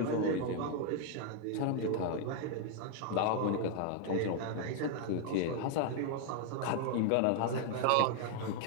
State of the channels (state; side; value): different; both; correlation 0.00